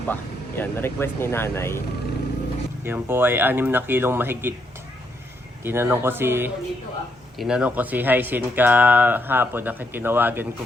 Yan, request ni nanay. Yan po ay 6 na kilong mahigit. Tinanong ko si Hyacin kahapon, tinawagan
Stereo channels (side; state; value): both; normal; correlation 0.76